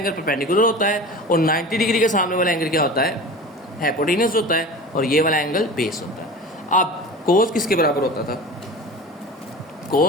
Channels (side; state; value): both; normal; correlation 0.35